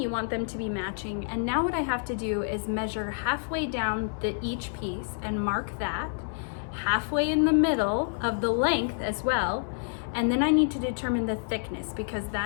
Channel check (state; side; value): silent; right; digital silence